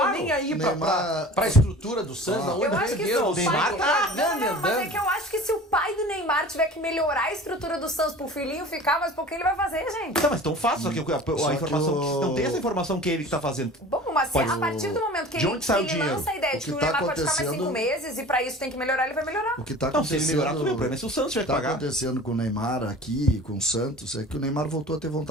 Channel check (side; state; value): both; normal; correlation 0.40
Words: Nem aí pra estrutura do Santos. Eu acho que o Neymar tá mas é que eu acho que se o pai do Neymar tiver que melhorar a estrutura do Santos pro filhinho ficar, mas por que ele vai fazer, gente? Não, mas tão fácil, só que a informação... Não tem essa informação que ele que tá fazendo. Bom, mas a partir do momento que ele lança a ideia de que o Neymar pode ficar mais 5 meses e pra isso tem que melhorar, ele vai melhorar. O que tá não, se ele melhorar, tudo bem. O acontecendo, problema é se o Santos tiver que pagar. O que tá acontecendo com o Neymar aqui, com o Santos, é que o Neymar voltou a ter